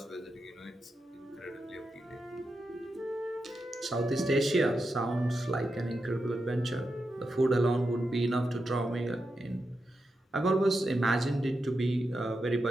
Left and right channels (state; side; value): normal; both; correlation 0.88